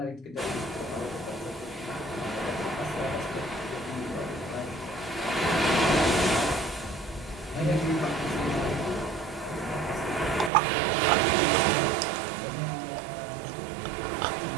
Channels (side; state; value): left; drops out; at 10.5 s